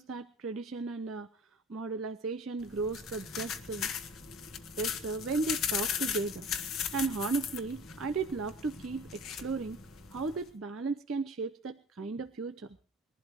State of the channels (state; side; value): normal; both; correlation 0.41